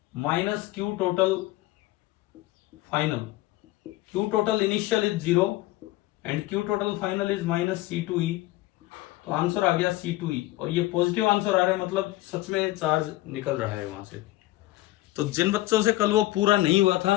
minus Q total final. Q total initial is 0 and Q total final is minus C2E। तो आंसर आ गया C2E, और ये पॉजिटिव आंसर आ रहा है, मतलब सच में चार्ज निकल रहा है वहां से। तो जिन बच्चों से कल वो पूरा नहीं हुआ था,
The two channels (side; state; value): right; quieter; 17.7 dB